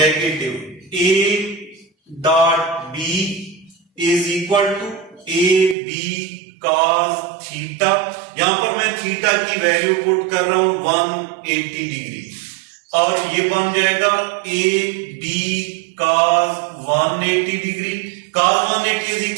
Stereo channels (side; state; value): left; drops out; at 5.8 s